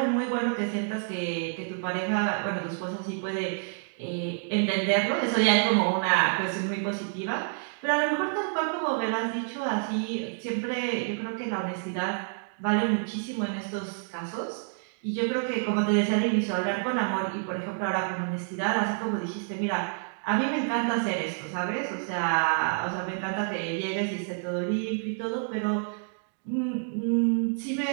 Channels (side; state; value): left; silent; 59 dB below the other